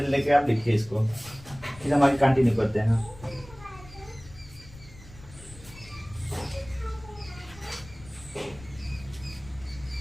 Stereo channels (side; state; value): left; noise; rumble, 19 dB below the sound